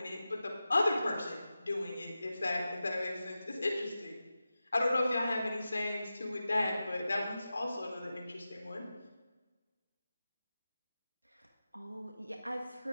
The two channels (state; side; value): inverted; both; correlation -0.93